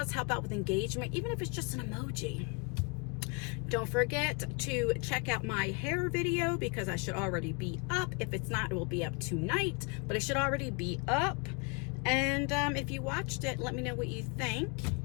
help out with engagement, even if it's just an emoji. Don't forget to check out my hair video because I should already be up. If it's not, it will be up tonight, but it should already be up. And if you watched it, let me know what you think.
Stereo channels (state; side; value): quieter; right; 32.8 dB